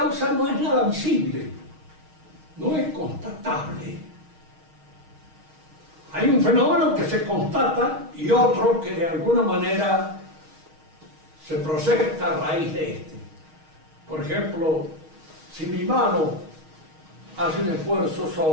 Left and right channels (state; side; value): late; left; 6.4 ms